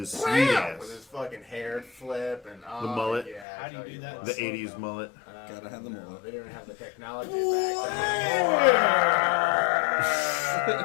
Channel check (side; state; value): right; drops out; at 3.5 s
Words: sweet With his ass. fuck hair flip and The mullet. Yeah, How do you I tell do that? what. The 80s mullet. Gotta have the No, mullet. They didn't have the technology back